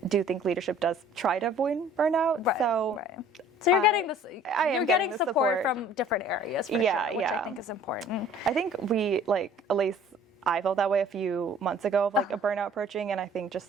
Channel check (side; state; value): both; normal; correlation 0.51